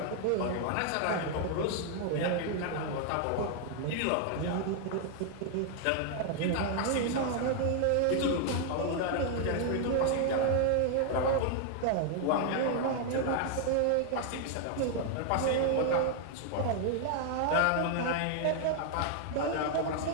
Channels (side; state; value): both; different; correlation 0.00